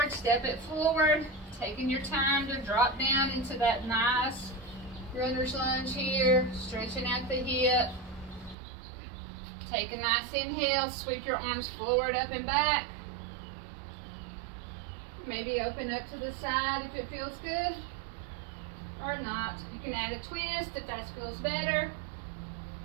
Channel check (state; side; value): drops out; left; at 8.6 s